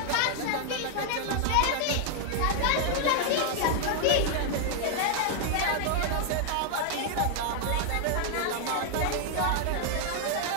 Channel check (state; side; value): different; both; correlation 0.00